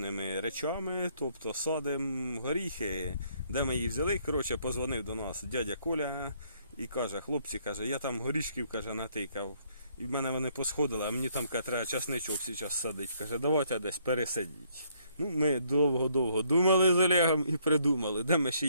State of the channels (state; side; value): inverted; both; correlation -0.68